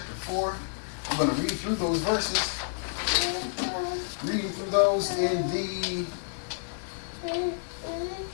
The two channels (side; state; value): right; silent; digital silence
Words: 4. I'm going to read through those verses. Reading through those in the...